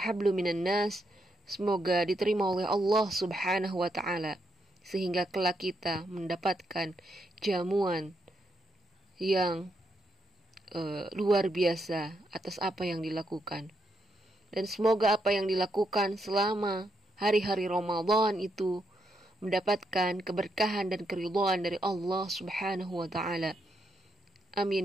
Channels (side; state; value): both; normal; correlation 0.80